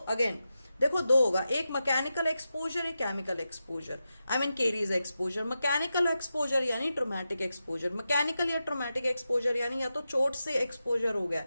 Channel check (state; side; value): inverted; both; correlation -0.90